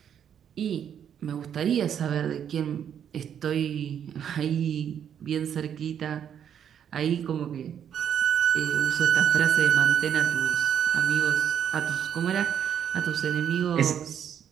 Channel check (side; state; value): left; quieter; 8.8 dB